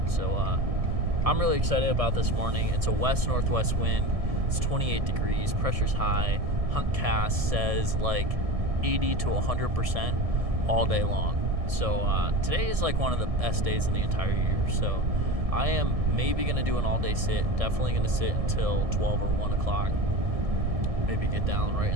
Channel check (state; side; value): late; left; 1.7 ms